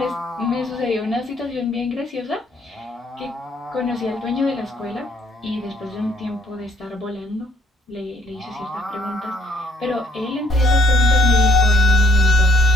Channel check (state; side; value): normal; both; correlation 0.65